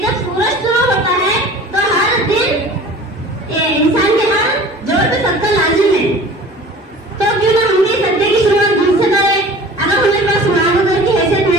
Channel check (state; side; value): normal; both; correlation 0.43